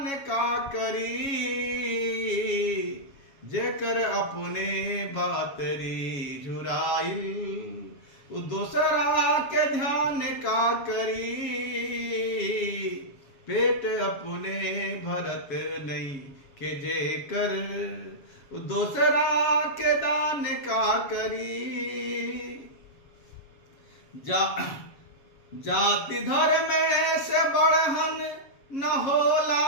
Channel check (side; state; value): right; late; 7.3 ms